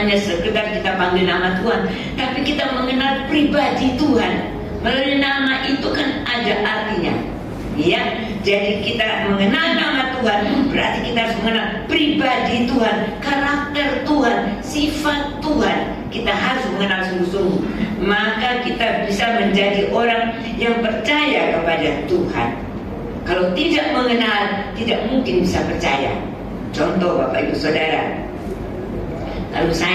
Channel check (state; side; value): identical; both; correlation 1.00